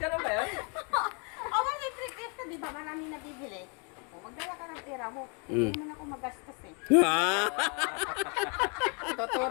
ba yun? Oh, may trip ito, di ba? Marami nabibili. O, magdala ka ng pera mo. Mm. Hindi mo na ako magastos eh. Ah,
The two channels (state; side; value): quieter; right; 35.9 dB